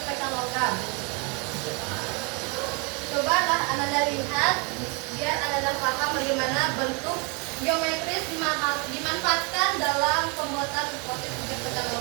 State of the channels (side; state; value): left; quieter; 32.8 dB